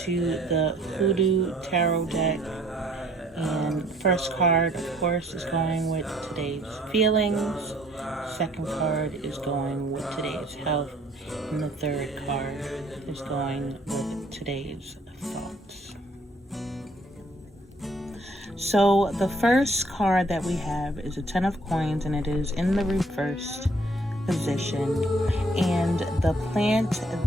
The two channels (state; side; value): normal; both; correlation 0.60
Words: to the HOODOO Tarot Deck. And first card, of course, is going with today's feelings. Second card is going with today's health. And the third card is going with today's thoughts. So the first card that we have is a 10 of coins, and it is in the reversed position. And the plant